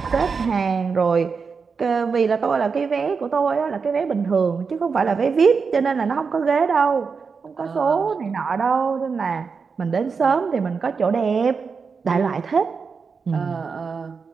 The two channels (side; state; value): left; quieter; 5.3 dB